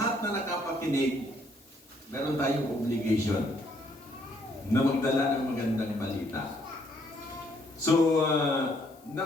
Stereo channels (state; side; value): noise; left; hiss, 28 dB below the sound